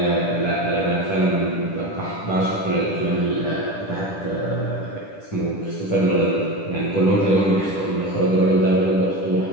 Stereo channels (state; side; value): late; right; 10 ms